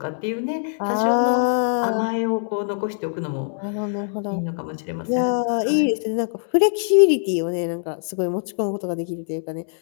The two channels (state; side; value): silent; right; 64 dB below the other